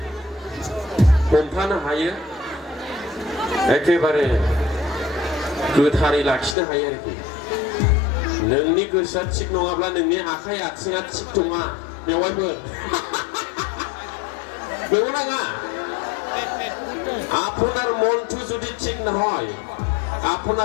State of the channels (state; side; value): drops out; right; at 6.6 s